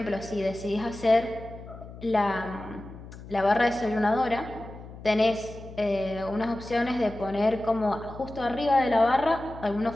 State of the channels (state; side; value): noise; left; hum, 15 dB below the sound